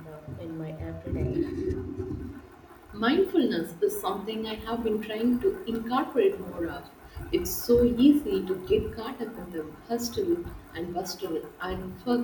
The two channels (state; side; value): identical; both; correlation 1.00